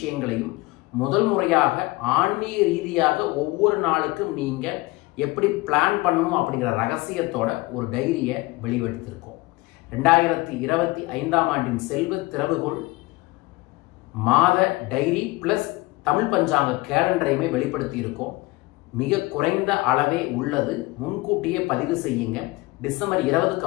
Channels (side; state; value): right; quieter; 21.9 dB